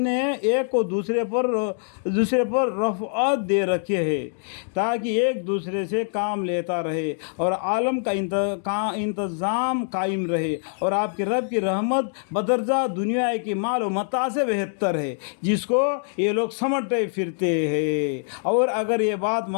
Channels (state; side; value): silent; right; digital silence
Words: ایک کو دوسرے پر رفعت دے رکھے ہے تاکہ ایک دوسرے سے کام لیتا رہے اور عالم کا انتظام قائم رہے، اور آپ کے رب کی رحمت بدرجہ دنیا کی مال و متاع سے بہتر ہے جس کو یہ لوگ سمجھتے پھرتے ہیں۔ اور اگر یہ بات